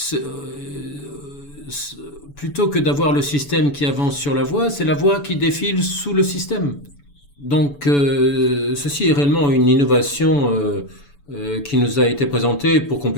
plutôt que d'avoir le système qui avance sur la voie, c'est la voie qui défile sous le système. Donc, ceci est réellement une innovation qui nous a été présentée pour qu'on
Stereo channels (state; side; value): late; right; 7.0 ms